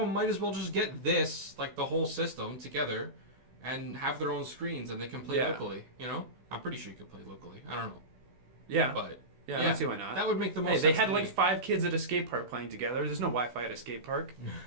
might as well just get this, like the whole system together, and have their own screens and they can play Yeah. locally. You know, I'm pretty sure you could play locally. I don't know, Yeah. but Yeah, I Yeah, don't see why not. That would make the most Hey, sense. they had to like me. 5 kids at a skate park playing together. There's no Wi-Fi at a skate park.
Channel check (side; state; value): left; late; 16 ms